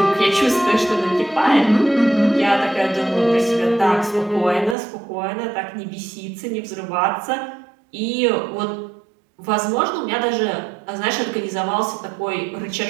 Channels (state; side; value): drops out; left; at 4.8 s